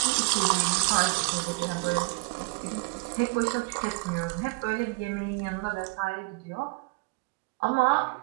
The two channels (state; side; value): quieter; left; 28.8 dB